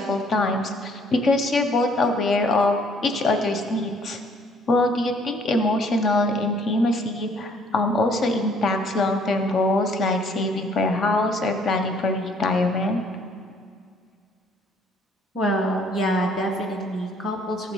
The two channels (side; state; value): both; normal; correlation 0.62